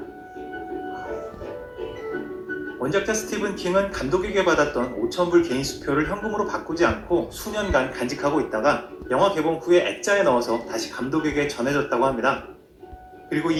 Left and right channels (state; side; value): identical; both; correlation 1.00